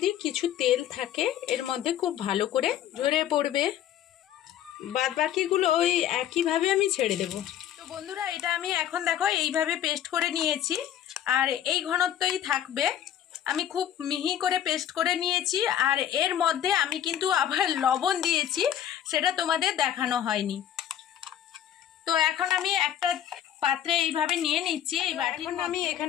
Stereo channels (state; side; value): quieter; right; 10.7 dB